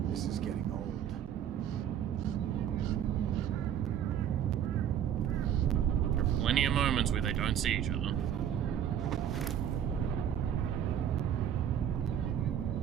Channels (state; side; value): quieter; left; 9.5 dB